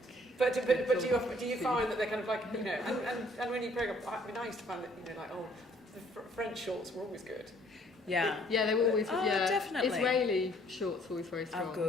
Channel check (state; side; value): normal; both; correlation 0.61